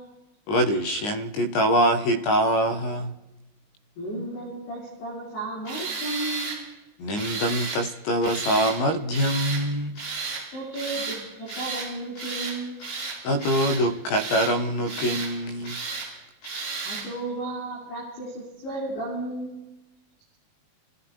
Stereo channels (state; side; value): late; right; 20 ms